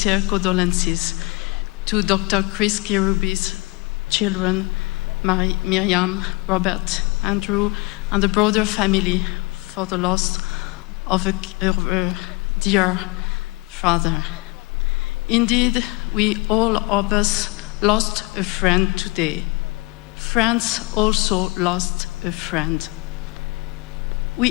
condolences to Dr. Chris Kirubi's children, Miriam, Robert, Andrew, and the broader family for the loss of a dear father. Indeed, we all of us lost a friend today. France also lost a friend.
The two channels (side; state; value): right; quieter; 24.9 dB